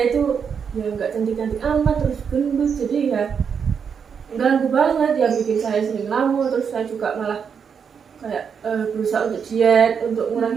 itu ya nggak cantik-cantik amat, terus gendut, jadi ya ganggu banget, ya bikin saya sering ngelamun. Terus saya juga malah kayak berusaha untuk diet, untuk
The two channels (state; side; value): quieter; left; 6.8 dB